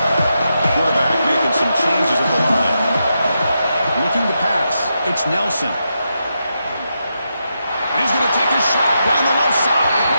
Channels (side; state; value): both; inverted; correlation -0.85